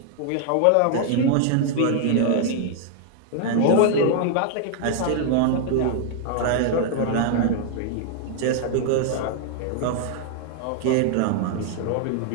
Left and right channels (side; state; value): both; different; correlation 0.00